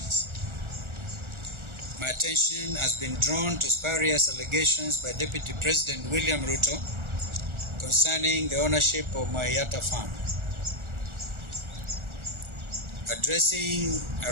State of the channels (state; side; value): late; left; 1.4 ms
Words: my attention has been drawn to spurious allegations by Deputy President William Ruto concerning the ownership of Musyoka farm. Addressing a